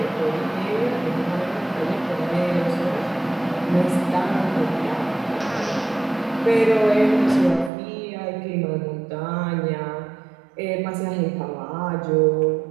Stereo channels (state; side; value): drops out; left; at 7.7 s